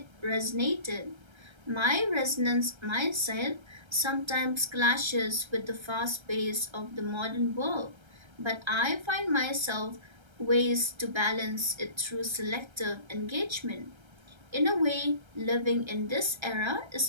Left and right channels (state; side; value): late; left; 1.3 ms